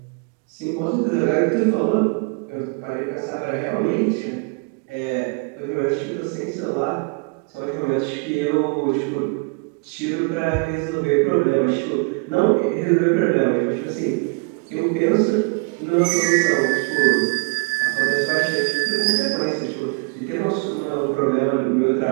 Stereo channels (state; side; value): quieter; left; 33.0 dB